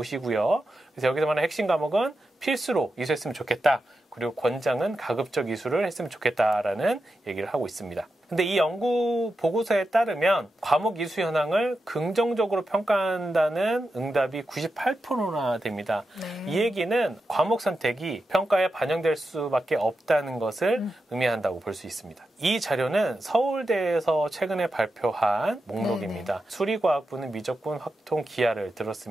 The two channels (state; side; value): normal; both; correlation 0.89